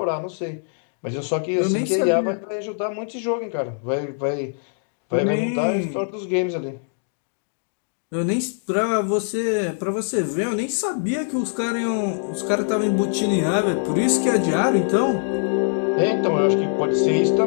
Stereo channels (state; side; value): silent; right; digital silence